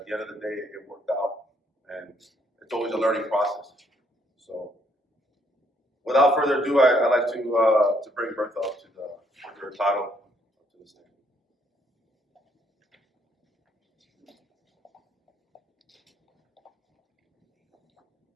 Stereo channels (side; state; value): both; normal; correlation 0.69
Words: the end of the day, it worked out. And it's always a learning process. So without further ado, I'd like to bring Bertha up to her title, up to the stand.